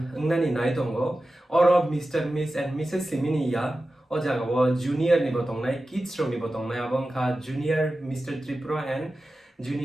ngnani nai tongo oro Mr. Miss and Mrs Simini ya o jaga wo junior ni botong nai kids ro ni botong nai abong kha junior Mr. Tripura and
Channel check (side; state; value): both; normal; correlation 0.94